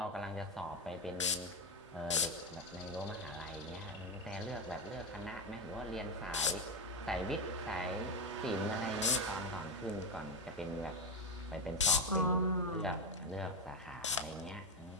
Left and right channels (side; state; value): both; normal; correlation 0.11